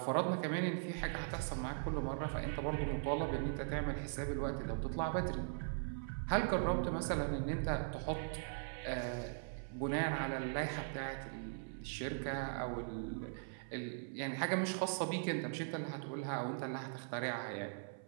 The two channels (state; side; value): silent; left; 51 dB below the other